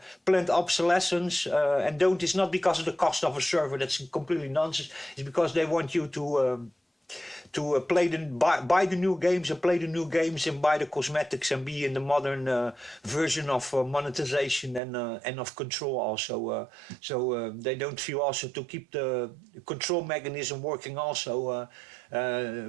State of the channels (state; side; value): drops out; left; at 14.8 s